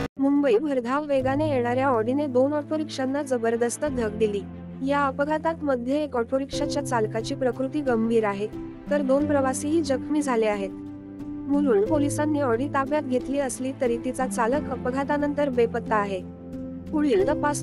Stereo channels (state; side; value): identical; both; correlation 1.00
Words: मुंबई भरधाव वेगाने येणाऱ्या ऑडीने 2 ऑटो रिक्षांना जबरदस्त धडक दिली। या अपघातात मध्ये एक ऑटो रिक्षाच्या चालकाची प्रकृती गंभीर आहे, तर 2 प्रवासीही जखमी झाले आहेत। मुलुंड पोलिसांनी ऑडी ताब्यात घेतली असली तरी तिचा चालक अपघातानंतर बेपत्ता आहे। पुढील तपास